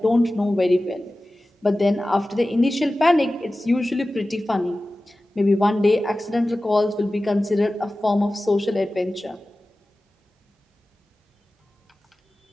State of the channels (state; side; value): normal; both; correlation 0.96